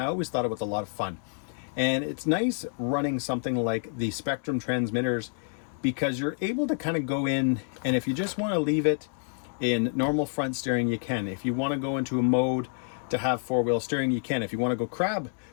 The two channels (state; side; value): silent; right; 59 dB below the other